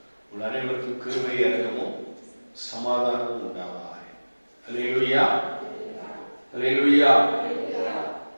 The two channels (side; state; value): both; inverted; correlation -1.00